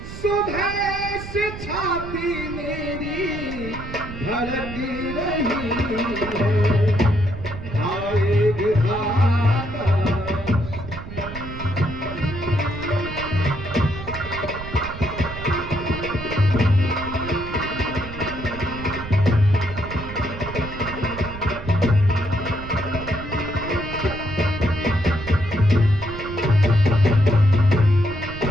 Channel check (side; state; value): right; noise; rumble, 11 dB below the sound